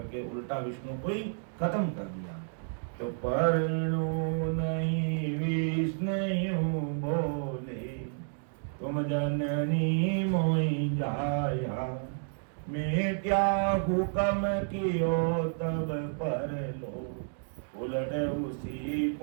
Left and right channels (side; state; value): left; silent; digital silence